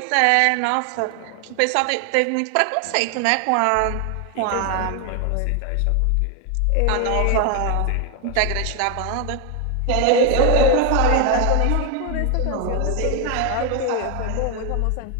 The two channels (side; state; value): both; different; correlation 0.01